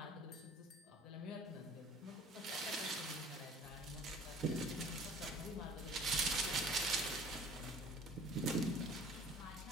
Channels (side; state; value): both; normal; correlation 0.50